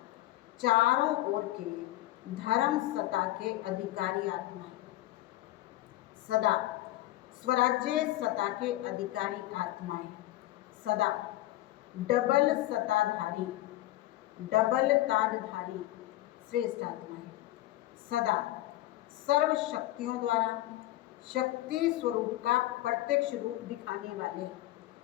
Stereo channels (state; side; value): quieter; right; 16.1 dB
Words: चारों ओर के धर्म सत्ता के अधिकारी आत्माएं, सदा स्वराज्य सत्ता के अधिकारी आत्माएं, सदा डबल सत्ताधारी, डबल ताजधारी श्रेष्ठ आत्माएं, सदा सर्व शक्तियों द्वारा शक्ति स्वरूप का प्रत्यक्ष रूप दिखाने वाले